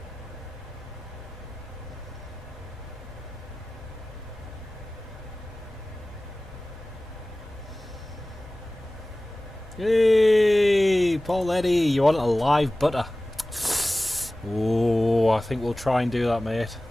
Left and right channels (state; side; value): normal; both; correlation 0.97